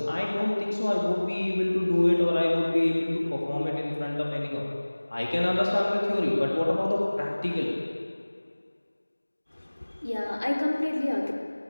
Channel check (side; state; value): both; inverted; correlation -1.00